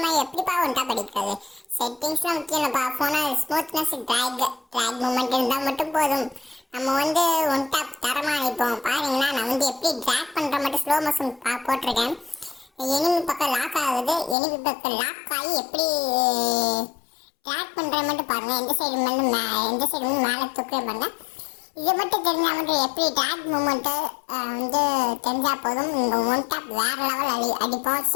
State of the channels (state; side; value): drops out; right; at 14.4 s